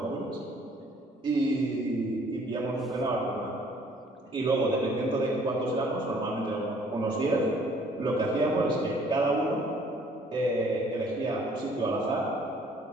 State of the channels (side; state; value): both; normal; correlation 0.59